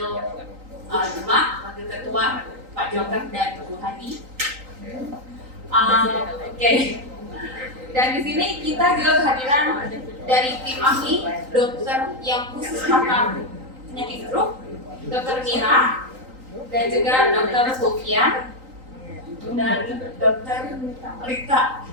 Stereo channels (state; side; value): late; left; 3.9 ms